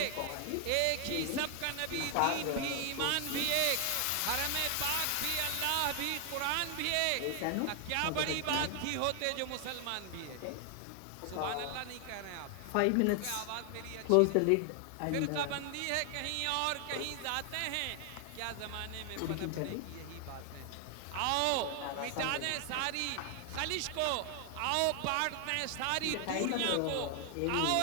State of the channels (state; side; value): different; both; correlation 0.00